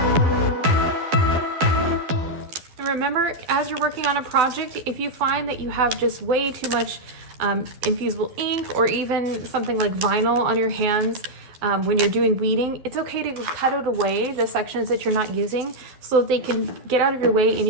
And remember, as you're working on a project, if you find that you have just way too much infusible ink or even something like vinyl on your hands, when you're doing weeding, it's okay to cut it away, the sections that you're not using, so that they can get out of your way and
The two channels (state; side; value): late; left; 12 ms